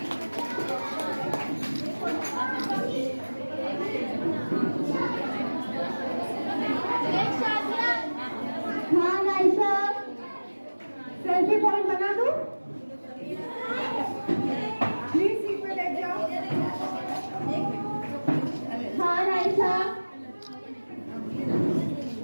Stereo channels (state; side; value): inverted; both; correlation -1.00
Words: Khan Aisha. Selfie point बना दूं? Please seat पे बैठ जाओ। खान आयशा।